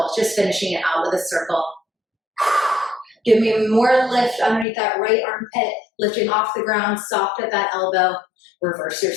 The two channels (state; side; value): drops out; right; at 4.7 s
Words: just finishing it out with a circle. Give me more lift underneath that right armpit, lifting off the ground, soft at that elbow. Reverse your